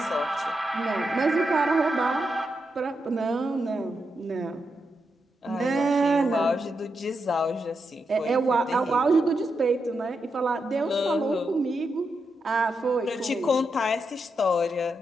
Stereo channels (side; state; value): both; normal; correlation 0.85